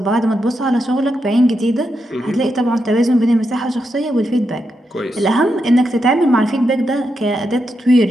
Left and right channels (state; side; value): normal; both; correlation 0.85